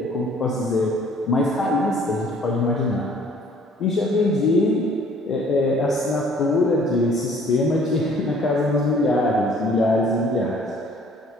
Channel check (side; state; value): both; normal; correlation 0.56